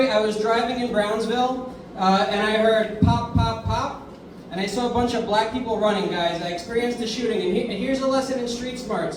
I was driving in Brownsville, and I heard pop, pop, pop, and I saw a bunch of black people running, guys. I experienced a shooting, and here's a lesson in street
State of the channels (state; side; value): identical; both; correlation 1.00